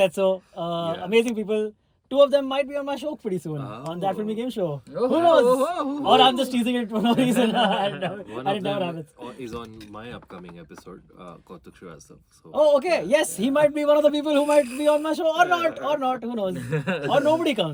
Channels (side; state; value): both; identical; correlation 1.00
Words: said so. Amazing people. 2 of them might be on my show pretty soon on that filmy game show. Who knows? Or I'm just teasing it for no reason. One and of it never them happens. is on my upcoming episode, Kautuk Shrivastava. So Oh, okay. Yes, he might be one of the people who might be on my show or not. Who knows? Or nobody